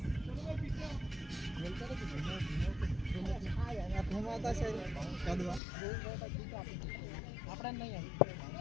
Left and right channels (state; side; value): drops out; right; at 5.6 s